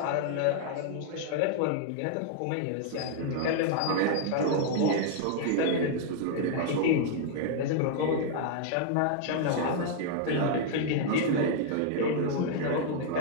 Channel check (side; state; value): both; different; correlation 0.00